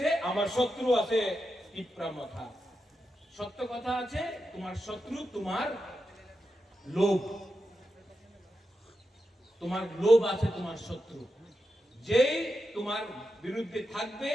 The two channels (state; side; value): normal; both; correlation 0.88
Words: আমার শত্রু আছে তিপরা মাথা। সত্য কথা আছে, তোমার শত্রু তোমার লোভ, তোমার লোভ আছে তোমার শত্রু। যেই তোমার বিরুদ্ধে থাকবে,